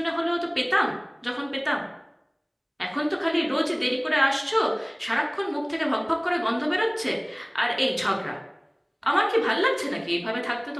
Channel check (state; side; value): identical; both; correlation 1.00